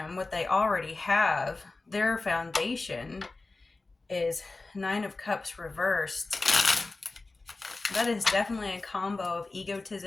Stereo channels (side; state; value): right; quieter; 3.4 dB